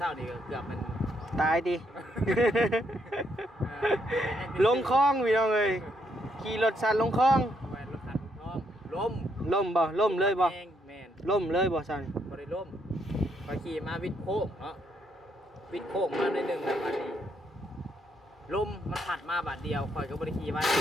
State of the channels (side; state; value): both; normal; correlation 0.74